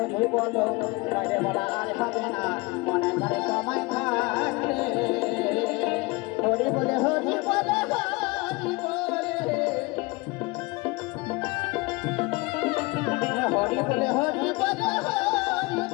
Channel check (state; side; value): quieter; right; 24.5 dB